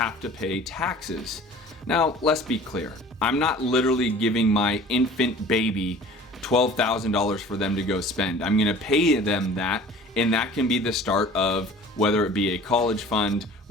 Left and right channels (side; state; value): both; normal; correlation 0.45